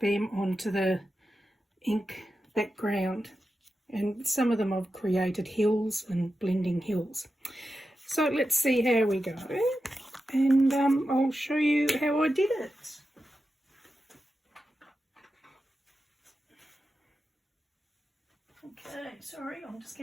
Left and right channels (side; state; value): both; normal; correlation 0.91